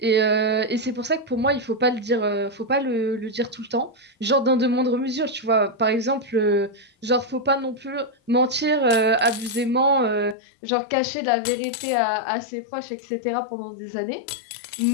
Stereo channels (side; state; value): right; drops out; at 10.4 s